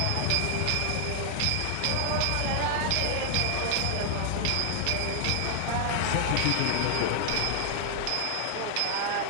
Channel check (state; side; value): different; both; correlation 0.00